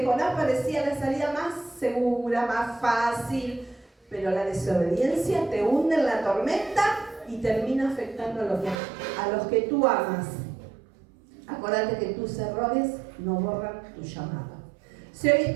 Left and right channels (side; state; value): left; drops out; at 8.8 s